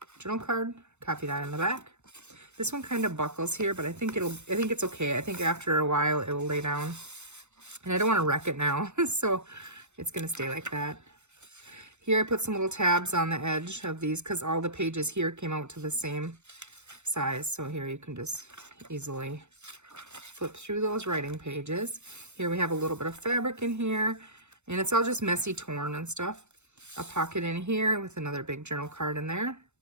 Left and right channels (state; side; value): late; left; 0.83 ms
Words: journal card, coffee dye on the back. This one kind of buckles here, but I think it's okay. I think after a while it will lay down. And I don't want to wreck it now, so it's gonna stay like that. Here I put some little tabs on the edge of these because all the pages here came out to the same size. So here you can just easily flip through those writing pages. Here we have a little bit of fabric in here, and it's all just messy torn and stuff. A pocket in here with another big journal card in there.